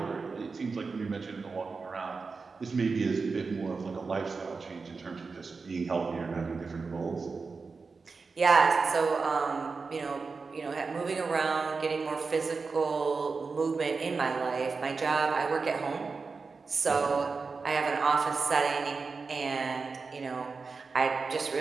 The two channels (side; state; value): left; quieter; 4.5 dB